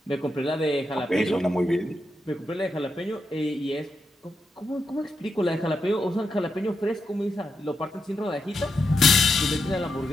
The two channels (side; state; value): both; normal; correlation 0.85